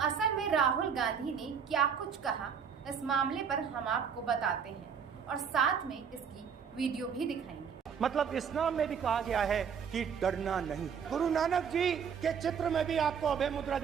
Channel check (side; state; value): left; quieter; 7.0 dB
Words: असल में राहुल गांधी ने क्या कुछ कहा, इस मामले पर हम आपको बताते हैं और साथ में इसकी वीडियो भी दिखाएंगे। मतलब इस्लाम में भी कहा गया है कि डरना नहीं। गुरु नानक जी के चित्र में भी आपको अभय मुद्रा